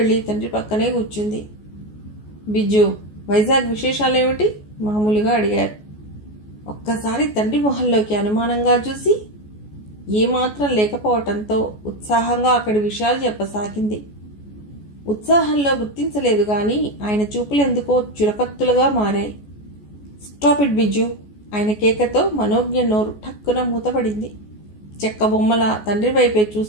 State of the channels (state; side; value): late; right; 14 ms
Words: తండ్రి పక్కనే కూర్చుంది. బిజ్జు, వైజాగ్ విశేషాలేమిటి? మామూలుగా అడిగారు. ఒక్కసారి తండ్రి మొహంలోకి అనుమానంగా చూసి ఏమాత్రం లేకపోవటంతో ఉత్సాహంగా అక్కడి విషయాలు చెప్పసాగింది. ఉత్సాహంలో గుర్తించలేదు గాని ఆయన చూపులెందుకో చురకత్తులుగా మారాయి. Stop it Biju! ఆయన కేకతో మనోజ్ఞ నోరు ఠక్కున మూతపడింది. చెక్క బొమ్మల తండ్రి వైపే